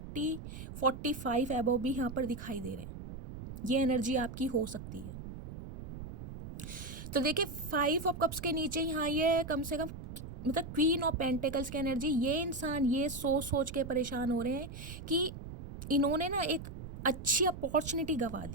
एबव भी यहाँ पर दिखाई दे रहे हैं, ये एनर्जी आपकी हो सकती है। तो देखिए 5 ऑफ कप्स के नीचे यहाँ ये कम से कम मतलब क्वीन ऑफ पेंटिकल्स की एनर्जी, ये इंसान ये सोच के परेशान हो रहे हैं कि इन्होंने ना एक अच्छी अपॉर्चुनिटी गंवा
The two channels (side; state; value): right; noise; rumble, 10 dB below the sound